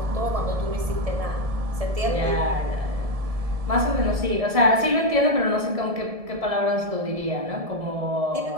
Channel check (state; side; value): late; left; 1.7 ms